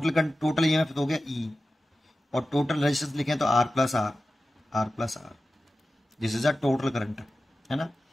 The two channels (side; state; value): both; normal; correlation 0.94